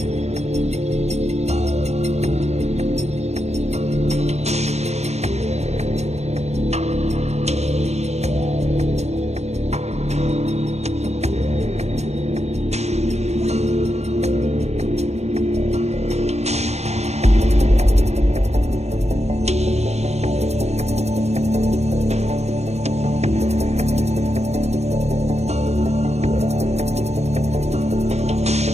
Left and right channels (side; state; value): left; late; 0.31 ms